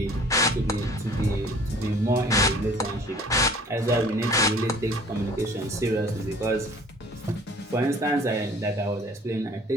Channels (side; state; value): both; normal; correlation 0.51